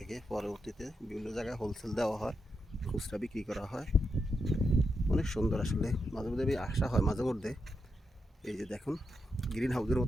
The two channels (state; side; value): normal; both; correlation 0.85